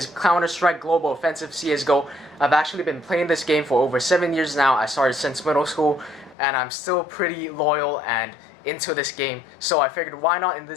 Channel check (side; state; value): right; drops out; at 6.4 s